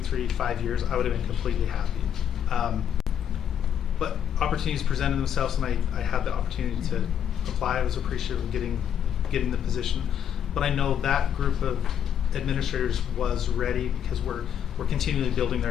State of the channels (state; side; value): quieter; right; 9.2 dB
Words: 3, 5 years, I would have been completely happy. But opportunities presented themselves, and I had the opportunity to apply. I was appreciative of getting the position. But I know that group of administrators was ready because we're continually building their